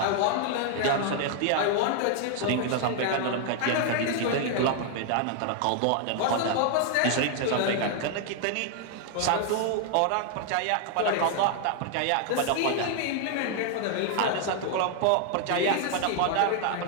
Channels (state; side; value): different; both; correlation 0.00